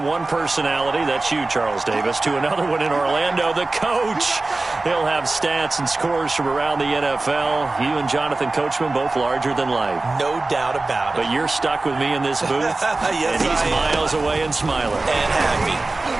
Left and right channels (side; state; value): left; quieter; 3.2 dB